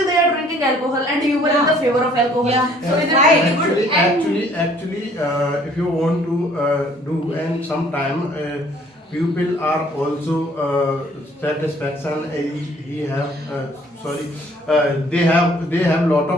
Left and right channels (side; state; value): both; normal; correlation 0.58